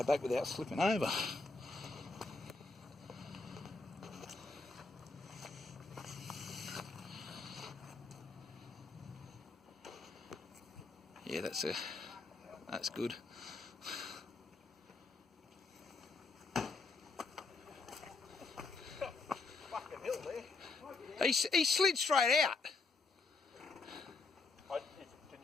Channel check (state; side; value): quieter; right; 3.9 dB